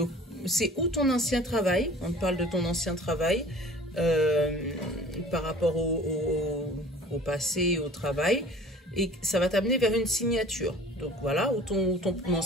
c'est où ton ancien travail? On parle de ton ancien travail par rapport au passé, au travail. Et ça va t'amener vers une signature. Donc, voilà, ou ton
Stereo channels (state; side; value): normal; both; correlation 0.46